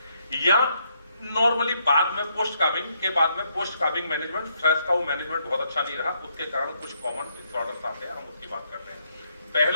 या नॉर्मली बाद में पोस्ट काविंग के बाद में पोस्ट काविंग मैनेजमेंट, स्ट्रेस का वो मैनेजमेंट बहुत अच्छा नहीं रहा, उसके कारण कुछ कॉमन डिसऑर्डर्स आते हैं, हम उसकी बात करते हैं।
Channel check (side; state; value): both; inverted; correlation -0.74